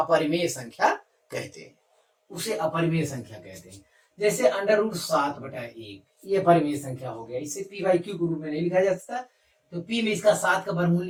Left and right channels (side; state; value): both; identical; correlation 1.00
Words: संख्या कहते हैं, उसे अपरिमेय संख्या कहते हैं। जैसे अंडर रूट 7/1 ये परिमेय संख्या हो गया, इसे p बाई क्यू के रूप में नहीं लिखा जा सकता, तो p में इसका 7 का वर्गमूल